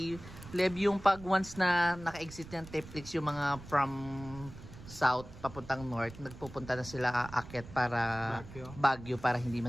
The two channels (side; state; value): right; noise; rumble, 16 dB below the sound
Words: Lev, yung pag once na naka-exit ng Teplix, yung mga from south papuntang north, nagpupunta na sila aakyat para Baguio para hindi